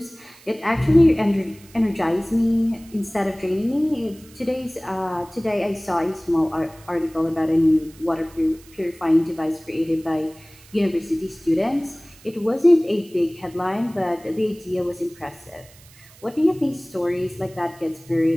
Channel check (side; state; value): right; noise; hiss, 24 dB below the sound